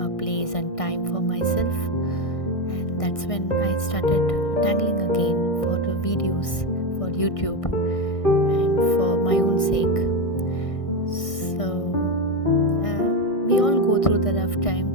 a place and time for myself. that's when I started tangling again for the videos for YouTube and for my own sake. So we all go through the rough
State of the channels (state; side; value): late; right; 1.6 ms